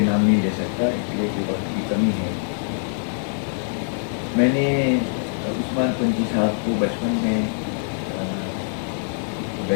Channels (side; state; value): right; silent; 63 dB below the other